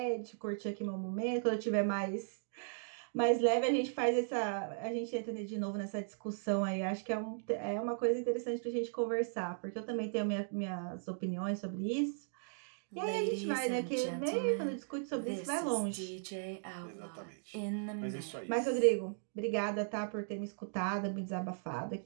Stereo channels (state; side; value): silent; left; digital silence